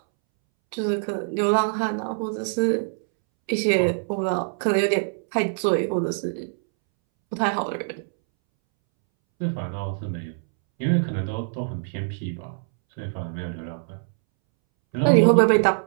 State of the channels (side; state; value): left; silent; 63 dB below the other